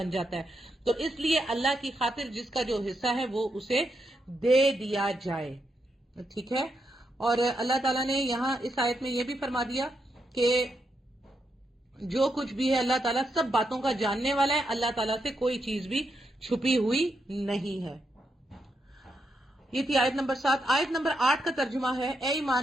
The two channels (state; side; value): normal; both; correlation 0.82